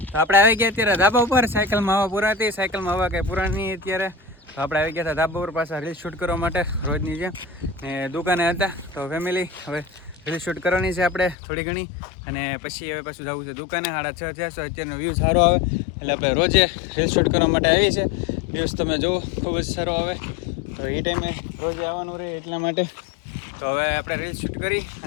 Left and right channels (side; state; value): right; drops out; at 11.4 s